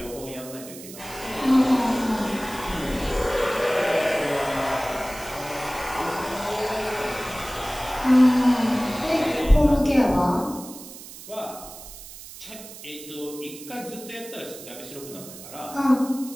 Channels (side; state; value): right; noise; hiss, 15 dB below the sound